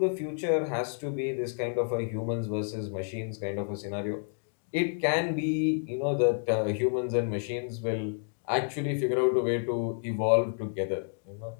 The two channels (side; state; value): right; silent; 58 dB below the other